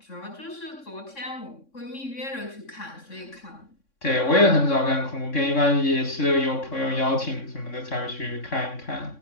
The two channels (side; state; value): right; late; 3.6 ms